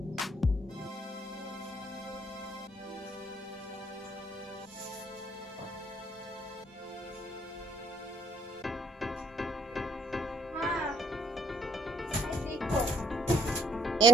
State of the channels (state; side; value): normal; both; correlation 0.66